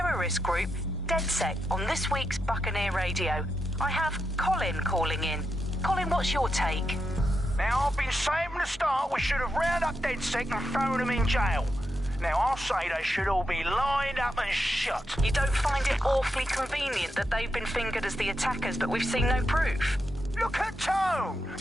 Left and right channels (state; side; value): normal; both; correlation 0.85